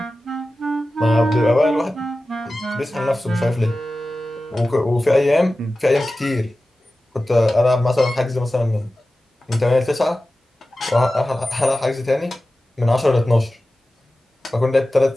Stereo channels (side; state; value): both; normal; correlation 0.95